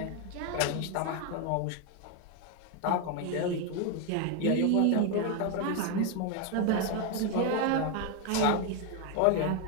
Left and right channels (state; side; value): different; both; correlation 0.01